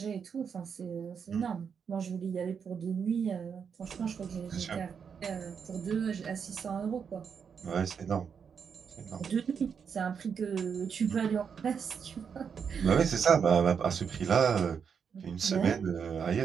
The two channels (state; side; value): quieter; left; 6.7 dB